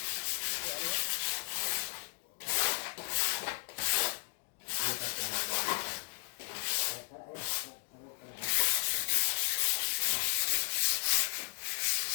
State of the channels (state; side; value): silent; right; digital silence